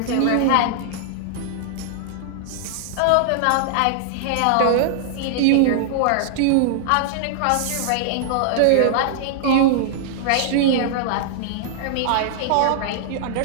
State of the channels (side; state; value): both; different; correlation -0.01